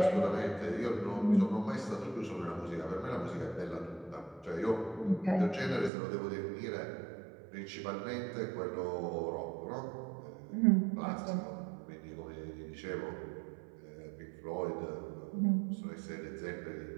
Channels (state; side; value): drops out; left; at 5.9 s